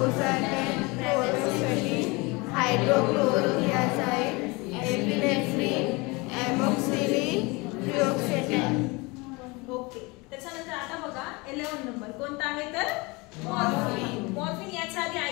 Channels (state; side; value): quieter; right; 25.8 dB